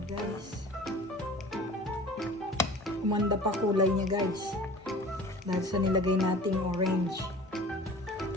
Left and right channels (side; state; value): both; normal; correlation 0.42